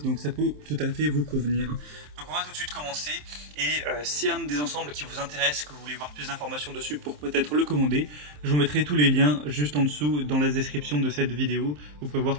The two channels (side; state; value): left; late; 27 ms